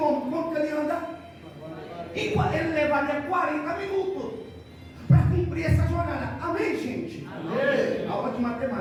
quanto ele anda? Ele levaria 40 minutos para cumprir essa jornada. Amém, gente? Amém. Aula de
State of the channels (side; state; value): both; identical; correlation 1.00